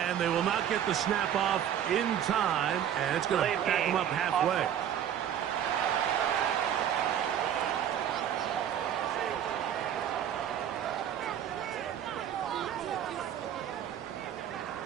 And they will not get the snap off in time, and it's going to back them up halfway.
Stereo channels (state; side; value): quieter; left; 9.8 dB